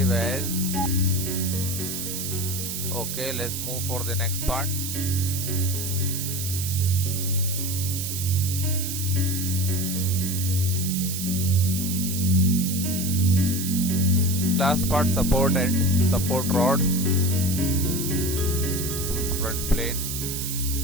as. Okay, let's move for the next part. Last part, support end, support rod. Choose front plane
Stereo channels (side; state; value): right; noise; hiss, 4 dB below the sound